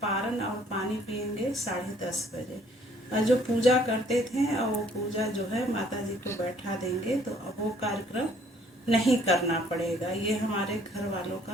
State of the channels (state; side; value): normal; both; correlation 0.61